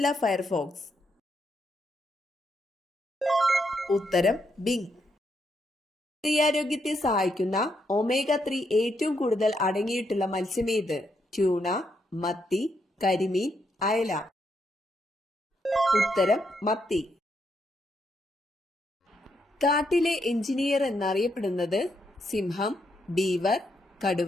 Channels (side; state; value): both; normal; correlation 0.79